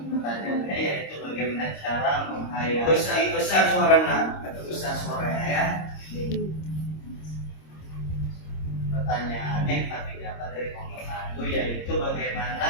Pertanyaannya yaitu bagaimana cara menghayati besar suara nak atau besar suara ya. Pertanyaannya kami dapat dari kelompok 1 yaitu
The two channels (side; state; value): right; late; 26 ms